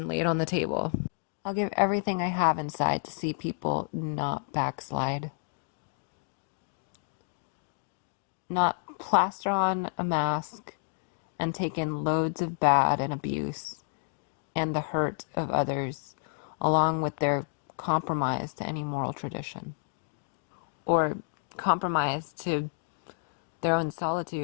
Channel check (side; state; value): right; silent; digital silence